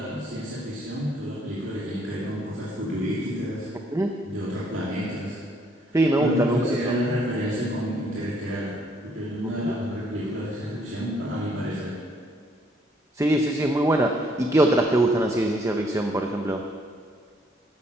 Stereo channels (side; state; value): both; normal; correlation 0.67